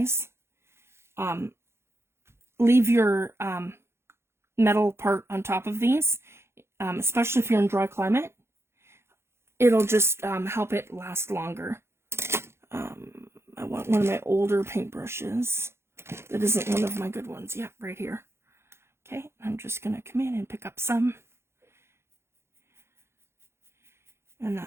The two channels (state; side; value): late; left; 0.12 ms